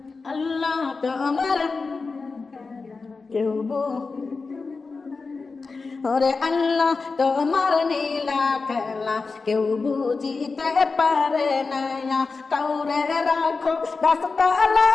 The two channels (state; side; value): quieter; right; 4.2 dB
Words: আল্লাহ তোমার কেউ ওরে আল্লাহ তোমার নীলা খেলা কেউ বুঝিতে পারে না, কাউরে রাখো